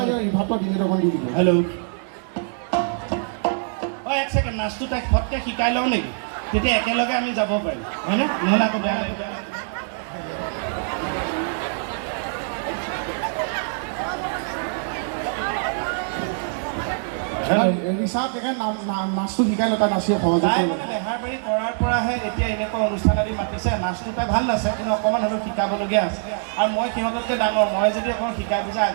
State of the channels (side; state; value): left; silent; digital silence